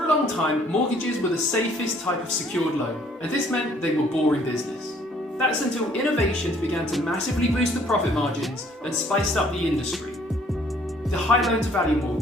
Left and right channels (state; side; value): normal; both; correlation 0.60